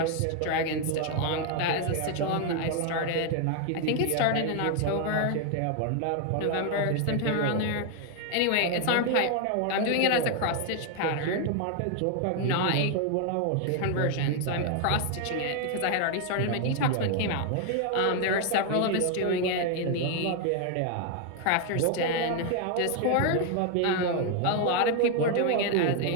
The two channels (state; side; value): different; both; correlation 0.00